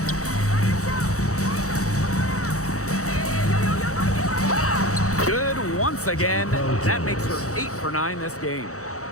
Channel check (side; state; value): right; late; 0.65 ms